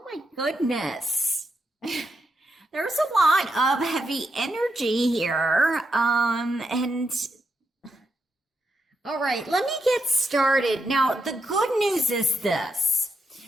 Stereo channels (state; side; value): normal; both; correlation 0.83